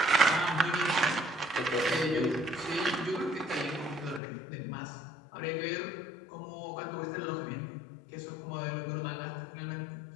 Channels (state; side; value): drops out; right; at 4.2 s